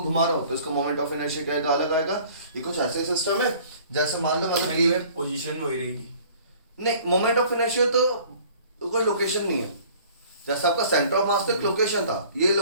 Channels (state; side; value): inverted; both; correlation -0.51